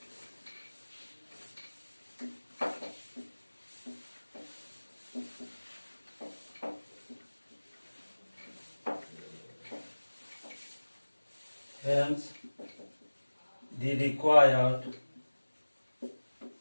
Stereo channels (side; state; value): both; inverted; correlation -1.00